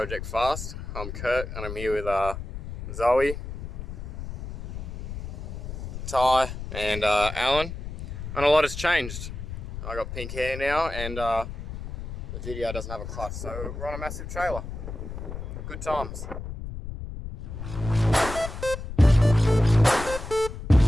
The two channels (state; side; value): noise; left; rumble, 8 dB below the sound